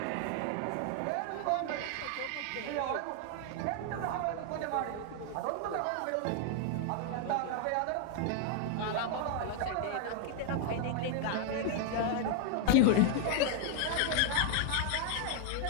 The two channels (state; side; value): different; both; correlation 0.00